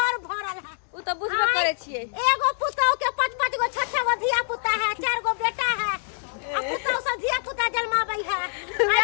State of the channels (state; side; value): silent; right; digital silence